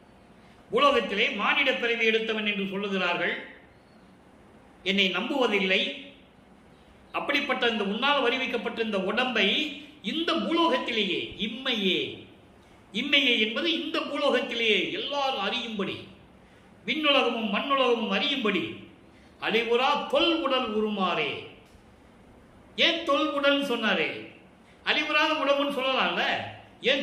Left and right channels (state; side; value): identical; both; correlation 1.00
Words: உலகத்திலே மானிட பிறவி எடுத்தவன் என்று சொல்லுகிறார்கள். என்னை நம்புவதில்லை. அப்படிப்பட்ட இந்த உன்னால் வருவிக்கப்பட்ட இந்த உடம்பை இந்த பூலோகத்திலேயே, இம்மையே என்பது இந்த பூலோகத்திலேயே எல்லாரும் அறியும்படி, விண்ணுலகமும் மண்ணுலகமும் அறியும்படி அழிவுறா தொல் உடல் உருமாறே. ஏன் தொல் உடல் சொன்னாரே? அழிவுறாத உடம்புன்னு சொல்லலாம்ல.